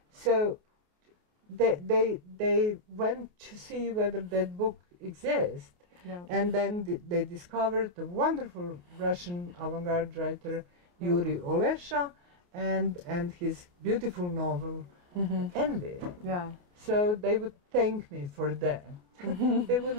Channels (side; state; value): left; late; 28 ms